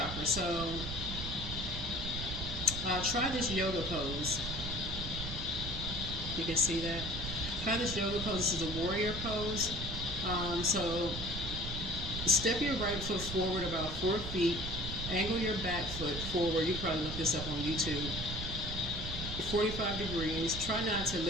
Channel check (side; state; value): right; noise; rumble, 6 dB below the sound